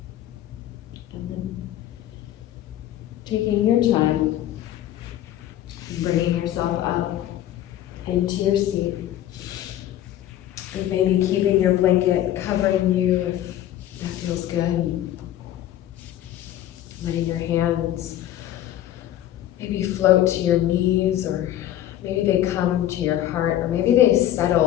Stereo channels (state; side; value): quieter; right; 12.6 dB